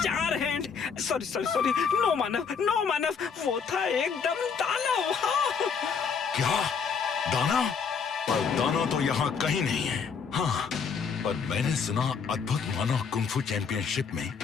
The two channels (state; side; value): quieter; right; 6.1 dB